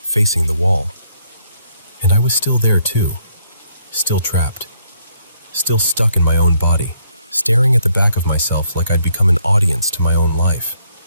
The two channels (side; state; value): both; inverted; correlation -0.70